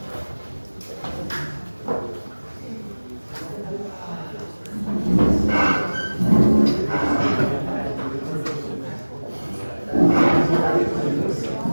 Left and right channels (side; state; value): both; inverted; correlation -1.00